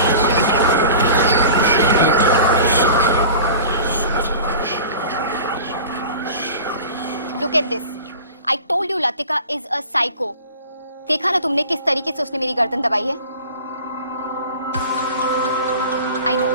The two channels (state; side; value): inverted; both; correlation -0.39